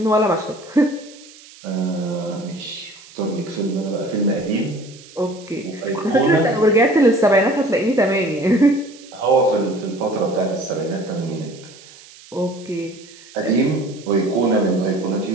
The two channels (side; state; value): right; noise; hiss, 21 dB below the sound